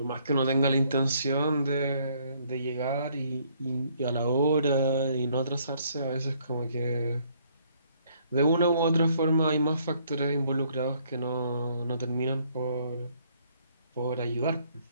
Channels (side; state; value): both; inverted; correlation -0.66